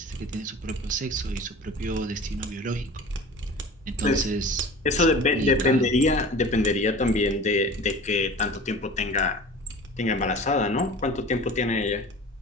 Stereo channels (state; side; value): normal; both; correlation 0.39